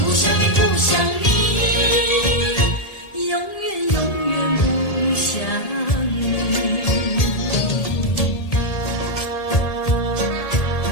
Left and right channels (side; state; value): right; late; 1.7 ms